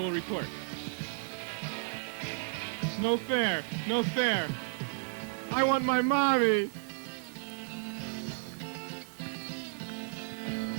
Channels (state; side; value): silent; left; 56 dB below the other